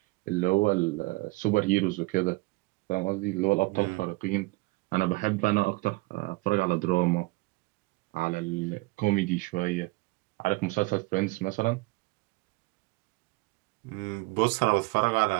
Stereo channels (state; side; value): quieter; left; 24.0 dB